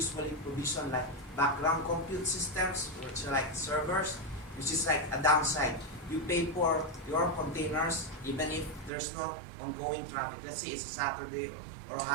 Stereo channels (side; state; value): left; drops out; at 8.9 s